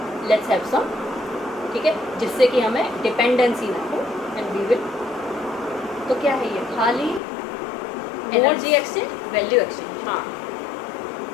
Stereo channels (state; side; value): drops out; right; at 7.2 s